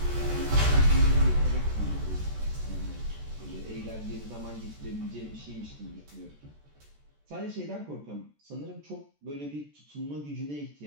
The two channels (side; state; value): left; late; 14 ms